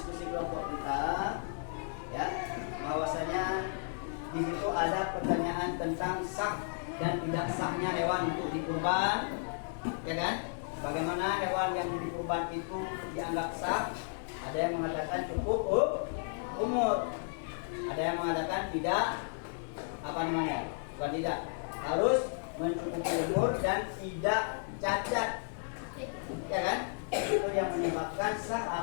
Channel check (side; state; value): right; silent; digital silence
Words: kita, ya, bahwasanya di situ ada pertanyaan tentang sah dan tidak sahnya hewan untuk dikurban, ya kan? Bagaimana hewan yang dikurban itu dianggap sah? Ada yang mengatakan cukup umur, ada yang mengatakan tidak, bukan tidak, harus mencukupi umur dan tidak cacat, ya kan? Itu yang menyebabkan